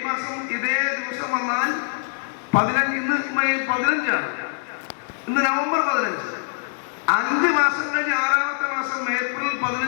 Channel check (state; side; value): silent; right; digital silence